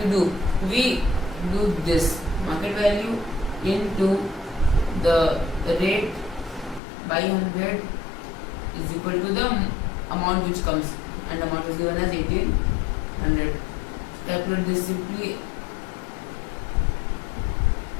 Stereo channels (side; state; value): right; drops out; at 6.8 s